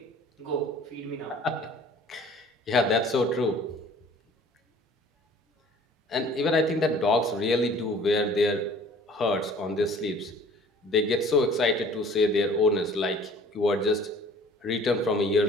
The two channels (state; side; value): normal; both; correlation 0.51